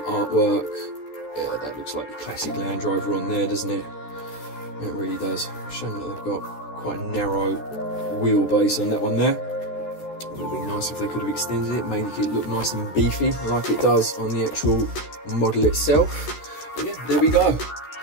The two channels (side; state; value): right; late; 13 ms